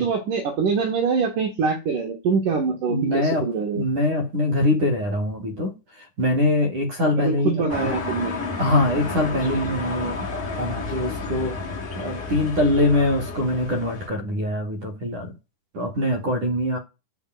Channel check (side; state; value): left; late; 10 ms